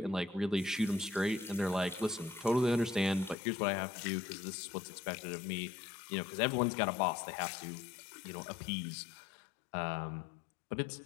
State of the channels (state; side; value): drops out; right; at 3.4 s